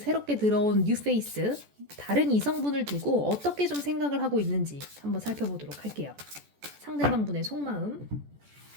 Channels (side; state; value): left; late; 14 ms